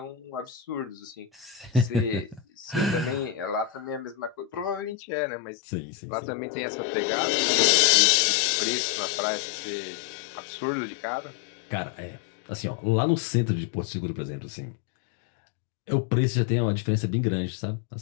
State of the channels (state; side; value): drops out; right; at 5.0 s